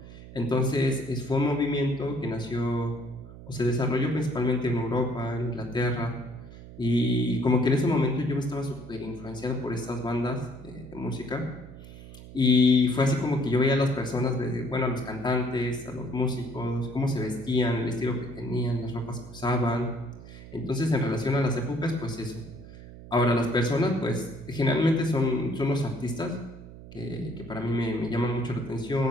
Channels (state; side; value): noise; right; hum, 16 dB below the sound